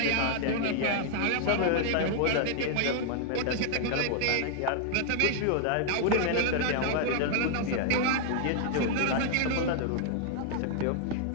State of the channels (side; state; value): both; different; correlation -0.01